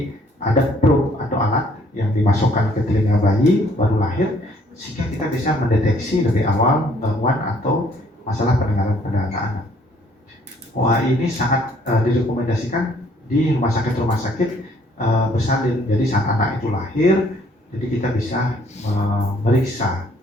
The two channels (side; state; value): both; normal; correlation 0.62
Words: ada probe atau alat yang dimasukkan ke telinga bayi baru lahir sehingga kita bisa mendeteksi lebih awal gangguan atau masalah pendengaran pada anak-anak. OAE ini sangat direkomendasikan di rumah sakit bersalin. Jadi saat anak itu lahir, jadi kita bisa memeriksa.